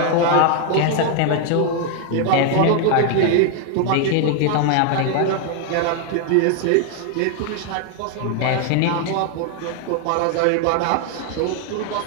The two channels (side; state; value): both; different; correlation 0.00